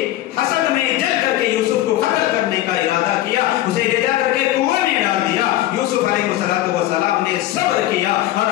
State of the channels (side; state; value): right; quieter; 14.9 dB